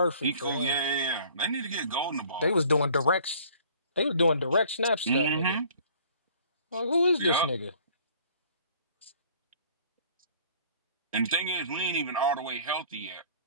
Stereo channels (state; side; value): inverted; both; correlation -0.53